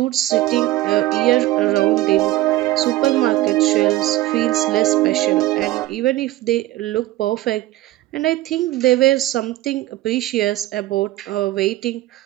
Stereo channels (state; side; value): quieter; left; 16.5 dB